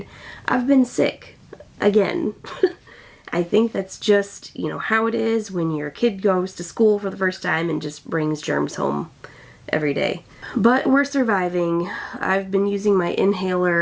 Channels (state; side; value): identical; both; correlation 1.00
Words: I've been sick again. I think that's just, you know, how it is when your kid goes to school for the first time and just brings germs home every day. But we're surviving. I've been using my